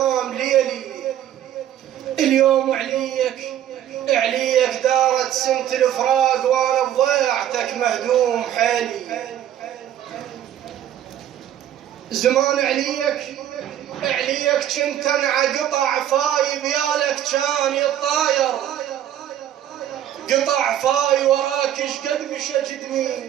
ليلي اليوم، عليك دارت سنة الفراق وانا بضيعتك مهدوم حالي. زمان عليك كنت انع قطع فاي بيالك كان يطاير، قطع فاي وراك اشقد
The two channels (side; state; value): left; quieter; 11.2 dB